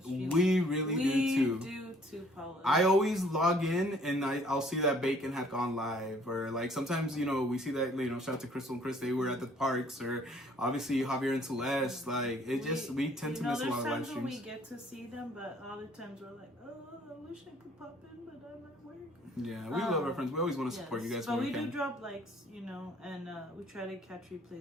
streams. We really do too. We do too, Paula. I always log in and I'll see that Bacon had gone live, or like sometimes, we see that, shout out to Crystal and Chris, they were at the parks, or obviously Javier and Celeste, like we tend to miss a lot of live streams. There's times when we get to see them, but other times we're like, oh, I wish I could pop in, but I'm at work. Yeah, we love our friends. We always want to support you guys. But we do drop likes, and we try to catch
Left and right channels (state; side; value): normal; both; correlation 0.59